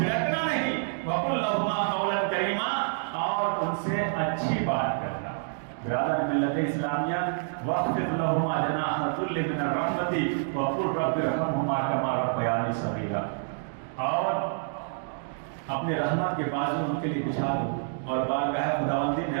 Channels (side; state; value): left; silent; digital silence